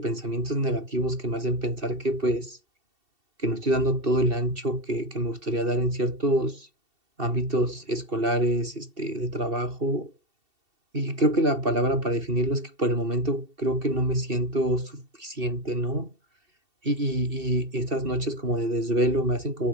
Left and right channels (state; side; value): late; left; 2.7 ms